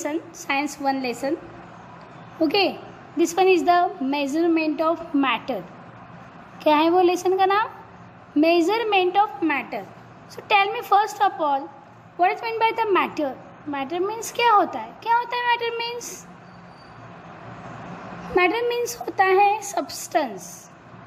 Science 1 lesson. Okay, this one is the measurement of matter. क्या है वो lesson का नाम? Measurement of matter. So tell me first of all, what is meant by the matter? Matter means क्या होता है? क्या होता है matter means? Matter means होता है substance.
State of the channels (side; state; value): both; identical; correlation 1.00